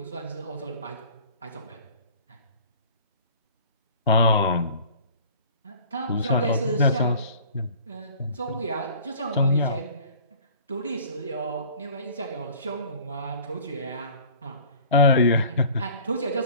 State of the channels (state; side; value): inverted; both; correlation -0.47